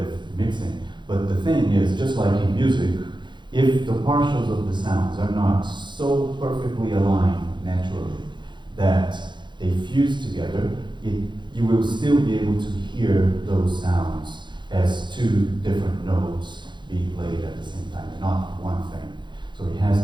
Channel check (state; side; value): late; left; 0.22 ms